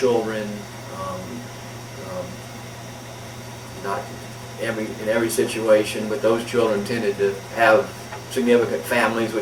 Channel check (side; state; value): both; identical; correlation 1.00